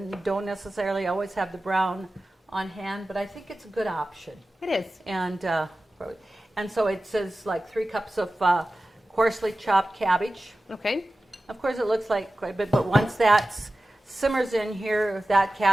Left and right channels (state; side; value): normal; both; correlation 0.95